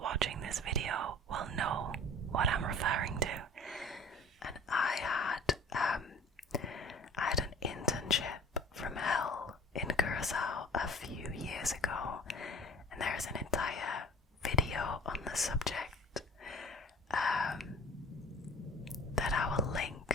watching this video will know what I'm referring to. And I had an internship from hell in Curacao a few years ago, and there's an entire video on the subject that I will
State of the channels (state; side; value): normal; both; correlation 0.45